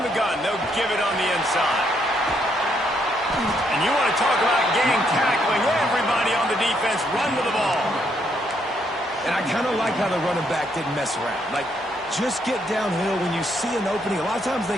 the gun, they'll give it on the inside. And you want to talk about gang tackling. Everybody on the defense run with the ball. And I kind of like how the running back didn't mess around. Like, just get downhill when you see an opening. A lot of times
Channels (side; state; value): both; normal; correlation 0.73